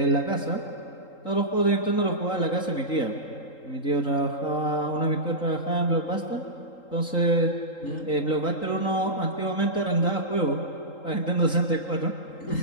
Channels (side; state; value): right; late; 3.8 ms